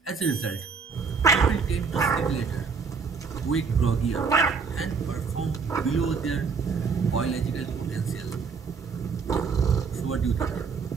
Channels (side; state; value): left; quieter; 5.4 dB